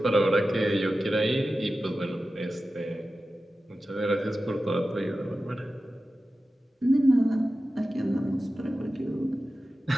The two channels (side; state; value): both; normal; correlation 0.94